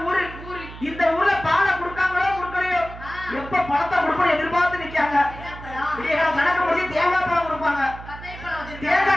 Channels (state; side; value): noise; right; hum, 14 dB below the sound